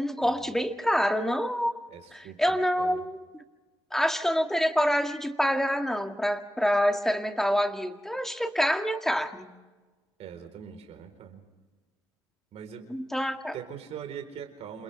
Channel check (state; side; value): normal; both; correlation 0.94